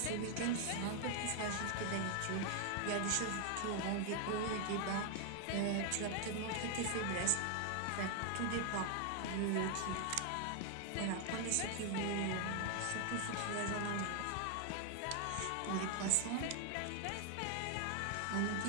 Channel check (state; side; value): different; both; correlation 0.00